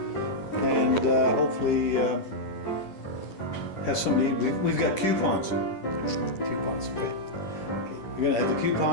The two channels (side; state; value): right; late; 10 ms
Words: and hopefully have somebody. We've got coupons. Coupons, okay. We're gonna have the